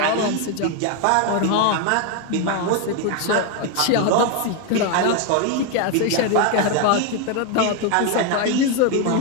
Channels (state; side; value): different; both; correlation 0.01